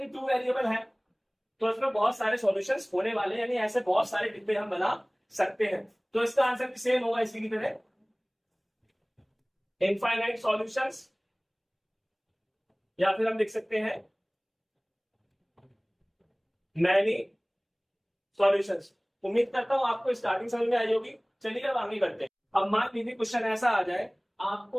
ये टू वेरिएबल है तो इसमें बहुत सारे सॉल्यूशंस होने वाले हैं, यानी ऐसे बहुत सारे डिब्बे हम बना सकते हैं। तो इसका आंसर सेम होगा इसी की तरह, इनफाइनाइट सॉल्यूशंस, या फिर हम लिख सकते हैं मैनी सॉल्यूशंस। उम्मीद करता हूं आपको स्टार्टिंग समझ में आई होगी। चलिए अब आगे करते हैं। अब मान लीजिए क्वेश्चन ऐसा आ जाए,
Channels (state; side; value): identical; both; correlation 1.00